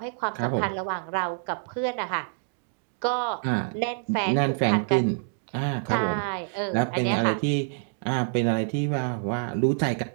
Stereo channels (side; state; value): left; silent; digital silence